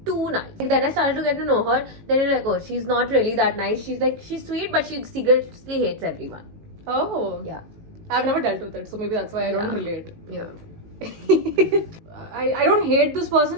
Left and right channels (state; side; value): late; left; 18 ms